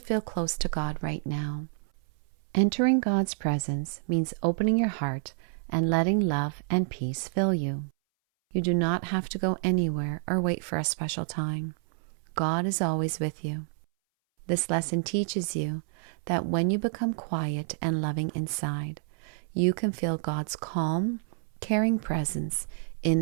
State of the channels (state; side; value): silent; left; 59 dB below the other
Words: close to God right now. Entering God's presence means opening your heart and letting love and peace fill you. You do not have to go anywhere or wait for a special time. God is always with you. This lesson teaches you that when you become quiet and loving inside, you can feel God's calm, caring presence